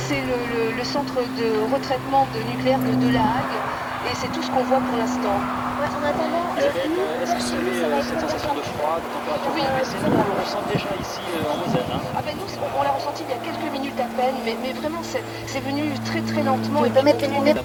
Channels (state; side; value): identical; both; correlation 1.00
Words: le centre de retraitement nucléaire de La Hague, et c'est tout ce qu'on voit pour l'instant. Ouais, en attendant, Est-ce que vous avez cette sensation de froid, de température Oui, baissée? Nous, on le ressent déjà ici en Moselle. Hein. Ah ben nous, on l'a ressenti il y a quelques minutes à peine, mais vraiment c'est venu très très lentement. Tu peux mettre les lunettes. La